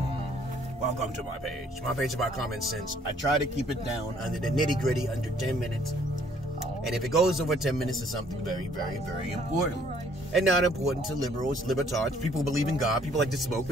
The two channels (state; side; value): normal; both; correlation 0.62